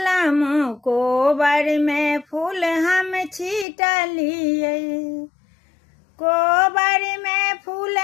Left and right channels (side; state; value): right; drops out; at 3.7 s